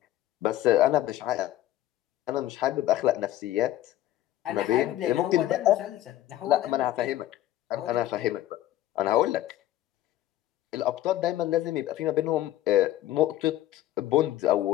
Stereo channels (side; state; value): right; quieter; 13.9 dB